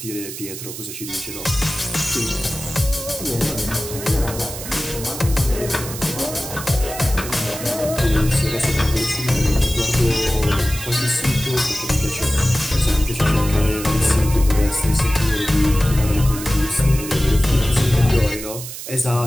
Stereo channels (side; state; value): right; noise; hiss, 10 dB below the sound